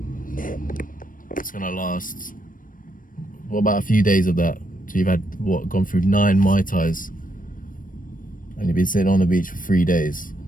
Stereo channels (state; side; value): late; right; 0.40 ms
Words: It's gonna last, what about a few days of that? So you've had, gone through 9 Mai Tais, and you've been sitting on the beach for 3 days.